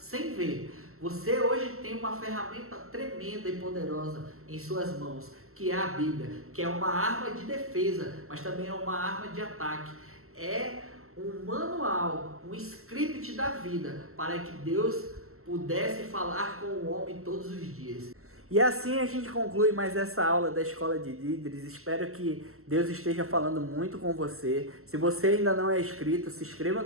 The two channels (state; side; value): late; left; 0.63 ms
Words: ver. Você hoje tem uma ferramenta tremenda e poderosa em suas mãos, que é a Bíblia, que é uma arma de defesa, mas também é uma arma de ataque. É um manual, um script da vida, para que Deus pudesse falar com o homem todos os dias. E assim a gente conclui mais essa aula da Escola de Líderes. Espero que Deus esteja falando muito com você. Se você ainda não é inscrito, se inscreva